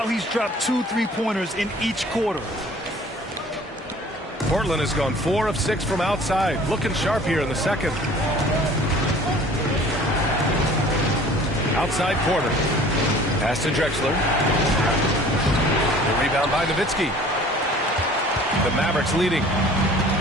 he's dropped 2 3-pointers in each quarter. Portland has gone 4 of 6 from outside. Looking sharp here in the second. Outside Porter. Pass to Drexler. The rebound by Nowitzki. The Mavericks leading.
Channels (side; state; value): both; normal; correlation 0.49